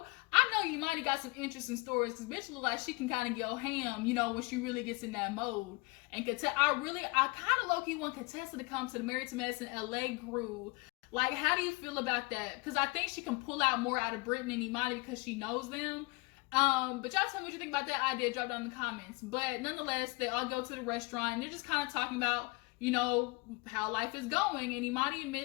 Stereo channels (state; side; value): quieter; right; 25.8 dB